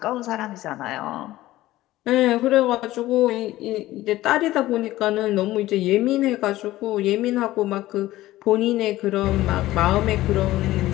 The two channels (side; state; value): right; quieter; 16.2 dB